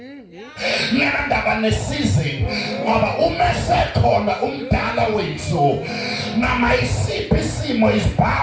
ngendaba ne-season, ngoba umesekhona umdala wethu noma isiphi isimo is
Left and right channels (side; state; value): both; identical; correlation 1.00